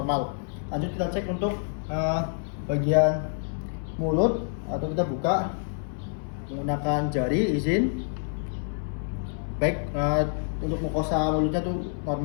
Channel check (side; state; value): right; silent; 57 dB below the other